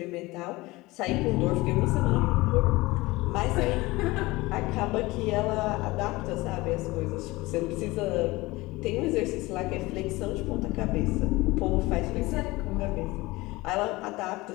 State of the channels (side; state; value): right; quieter; 21.0 dB